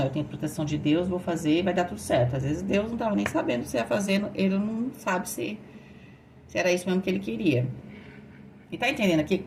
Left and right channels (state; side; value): identical; both; correlation 1.00